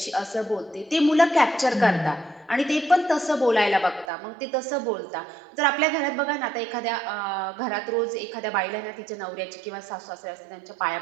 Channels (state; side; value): drops out; left; at 4.0 s